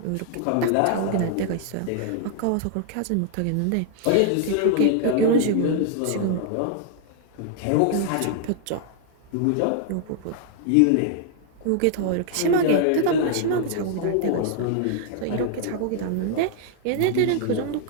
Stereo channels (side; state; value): both; different; correlation 0.00